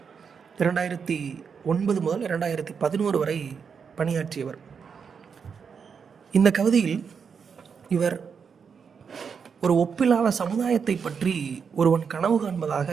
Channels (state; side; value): quieter; left; 6.3 dB